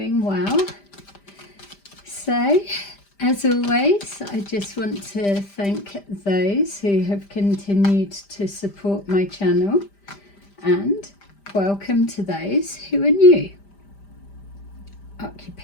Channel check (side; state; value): right; late; 5.0 ms